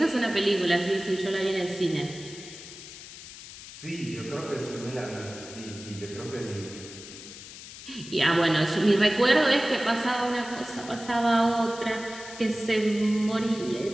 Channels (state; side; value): noise; left; hiss, 14 dB below the sound